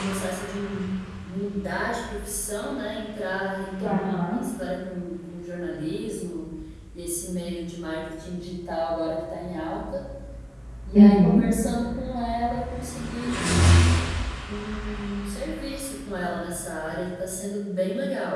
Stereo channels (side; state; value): both; identical; correlation 1.00